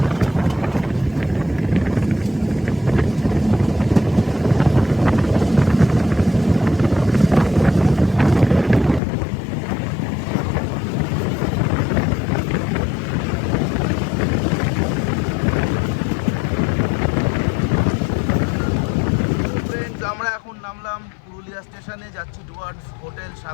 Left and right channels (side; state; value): right; drops out; at 9.0 s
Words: ফ্রেন্ডস, আমরা এখন নামলাম পুরুলিয়া স্টেশনে, যাচ্ছি টুয়ার্ডস হোটেল